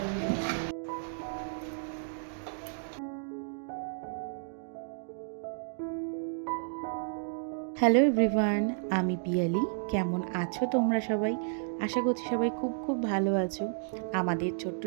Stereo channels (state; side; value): silent; left; digital silence